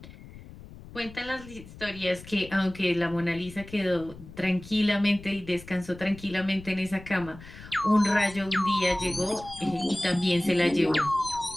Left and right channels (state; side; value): noise; left; rumble, 17 dB below the sound